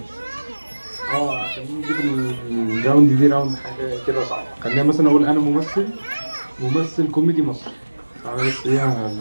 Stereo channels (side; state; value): both; inverted; correlation -1.00